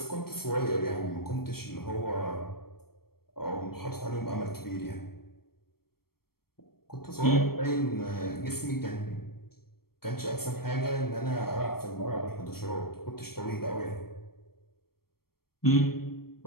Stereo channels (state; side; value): late; right; 0.94 ms